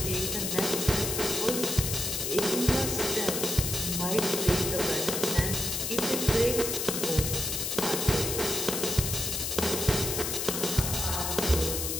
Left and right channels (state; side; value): noise; left; hiss, 1 dB below the sound